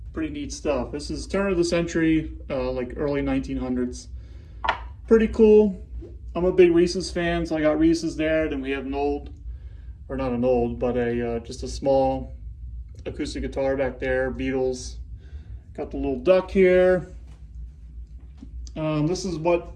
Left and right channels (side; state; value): both; identical; correlation 1.00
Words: Pretty neat stuff. This is turn of the century, like early 1900s. Pretty cool. I'm a big Reese's fan, so I got Reese's there. Then we have an old, or not an old, but just a small acoustic guitar back there, Beatles. Got the little duck here. This is